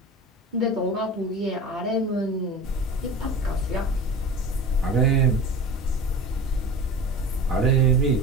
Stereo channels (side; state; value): both; normal; correlation 0.33